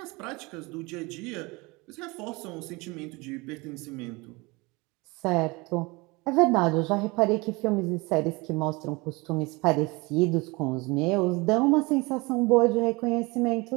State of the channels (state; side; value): quieter; left; 25.1 dB